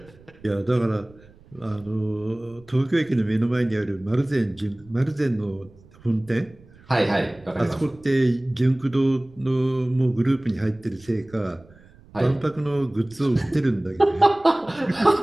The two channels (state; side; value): noise; right; rumble, 25 dB below the sound